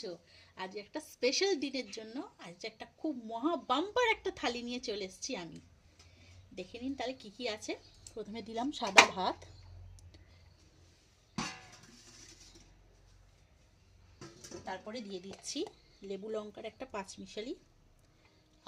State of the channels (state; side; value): identical; both; correlation 1.00